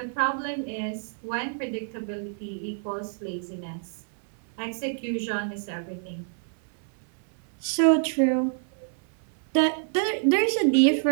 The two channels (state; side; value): silent; left; 60 dB below the other